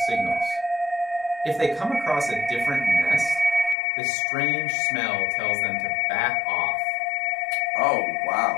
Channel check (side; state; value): right; drops out; at 3.8 s